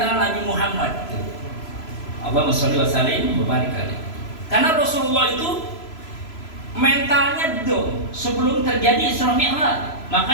Nabi Muhammad. Allahumma sholli wa sallim wa barik alaihi. Karena Rasulullah itu mentalnya down sebelum terjadi Isra Mi'raj.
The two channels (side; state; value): right; late; 3.0 ms